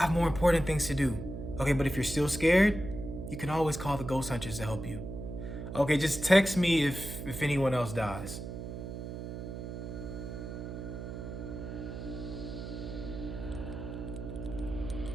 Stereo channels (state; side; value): noise; right; hum, 7 dB below the sound